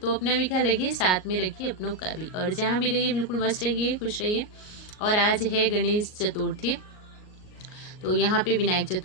अपना भी ख्याल रखिए, साथ में रखिए अपनों का भी, और जहाँ भी रहिए बिल्कुल मस्त रहिए, खुश रहिए। और आज है गणेश चतुर्थी, तो यहाँ पे विनायक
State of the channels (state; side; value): late; right; 38 ms